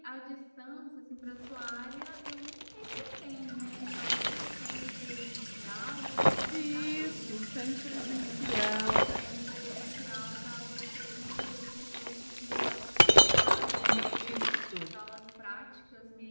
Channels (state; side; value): inverted; both; correlation -1.00